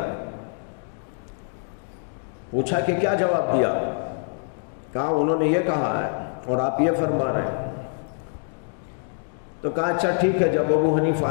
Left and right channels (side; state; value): right; silent; digital silence